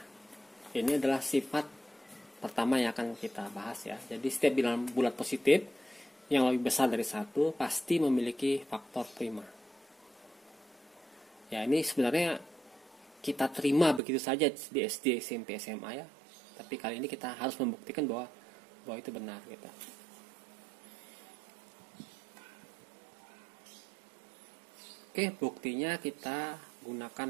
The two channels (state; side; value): drops out; left; at 14.0 s